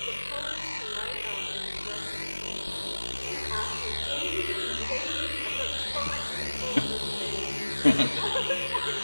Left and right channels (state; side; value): inverted; both; correlation -1.00